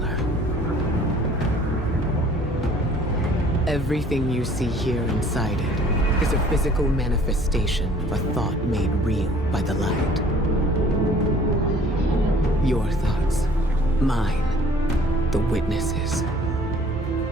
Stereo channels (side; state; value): both; normal; correlation 0.54